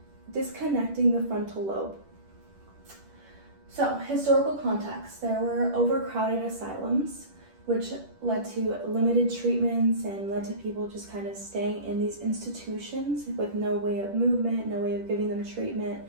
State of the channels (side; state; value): left; late; 10 ms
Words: disconnecting the frontal lobe. So, historical context. There were overcrowded asylums, which led to limited treatments and led to people just kind of staying in these institutions with no way of movement, no way of giving them treatment